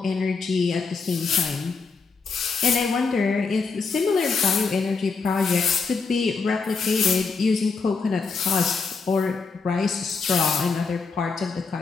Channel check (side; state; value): right; quieter; 4.8 dB